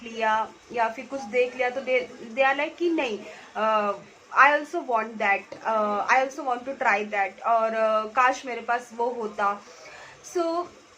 लिया या फिर कुछ देख लिया तो दे आर लाइक कि नहीं, I also want that, I also want to try that, और काश मेरे पास वो होता.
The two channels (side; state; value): both; identical; correlation 1.00